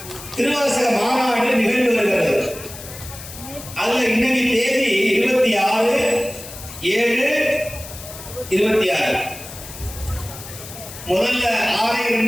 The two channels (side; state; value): left; noise; hiss, 14 dB below the sound